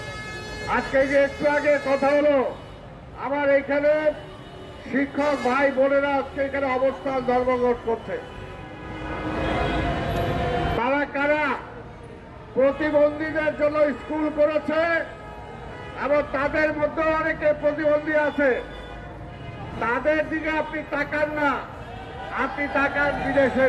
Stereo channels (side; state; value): both; identical; correlation 1.00